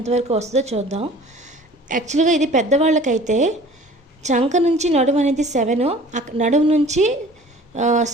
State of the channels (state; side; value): normal; both; correlation 0.47